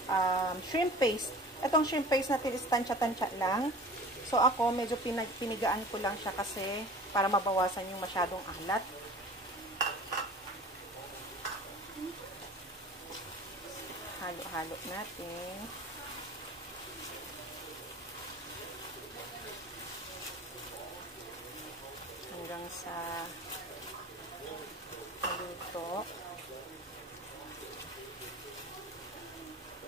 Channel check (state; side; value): normal; both; correlation 0.42